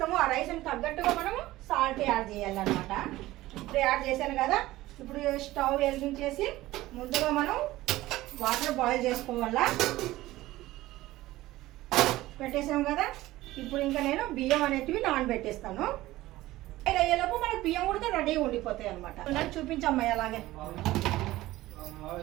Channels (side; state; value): left; quieter; 17.0 dB